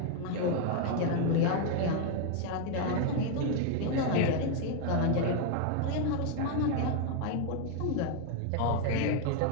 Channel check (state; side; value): different; both; correlation 0.01